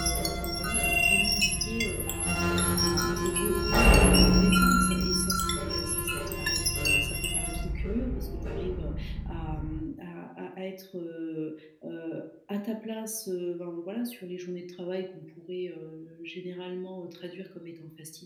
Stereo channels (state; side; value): identical; both; correlation 1.00